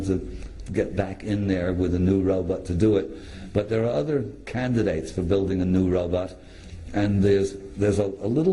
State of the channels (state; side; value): identical; both; correlation 1.00